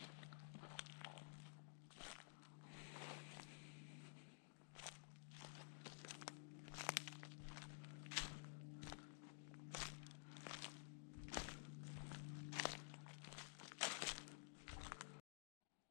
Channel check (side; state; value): right; silent; digital silence